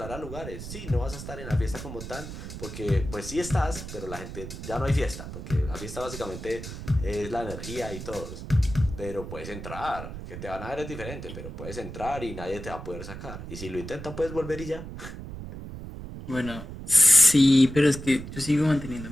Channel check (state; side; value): noise; right; rumble, 10 dB below the sound